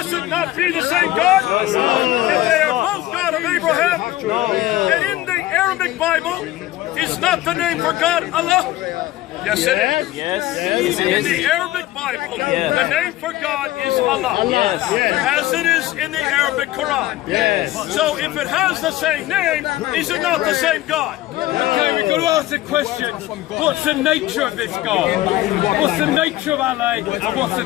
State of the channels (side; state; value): right; quieter; 16.0 dB